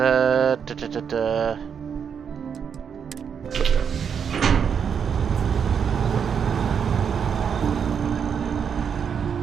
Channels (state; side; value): quieter; left; 7.2 dB